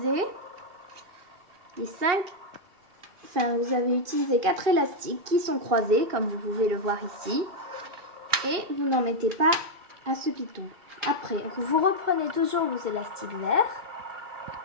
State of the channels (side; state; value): left; late; 2.5 ms